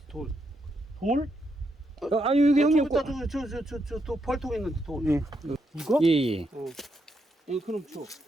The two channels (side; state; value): both; normal; correlation 0.80